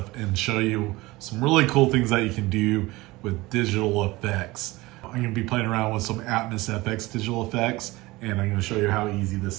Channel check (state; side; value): quieter; left; 20.6 dB